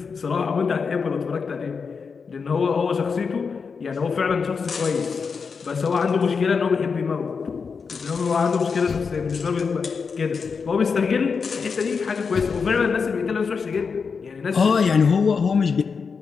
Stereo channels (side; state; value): right; quieter; 5.5 dB